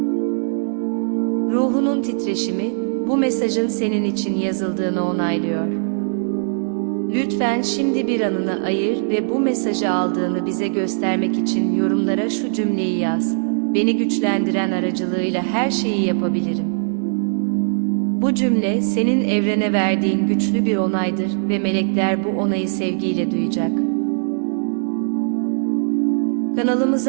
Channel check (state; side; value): silent; left; digital silence